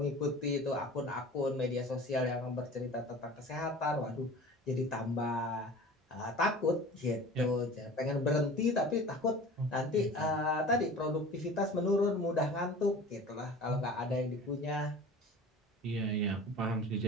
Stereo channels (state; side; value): normal; both; correlation 0.40